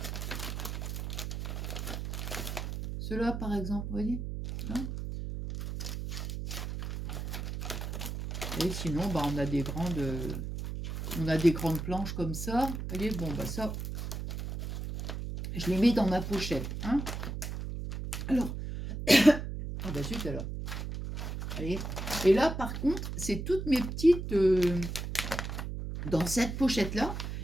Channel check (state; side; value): noise; right; hum, 5 dB below the sound